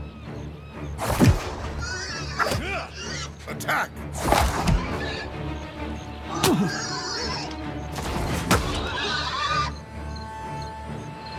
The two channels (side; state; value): both; identical; correlation 1.00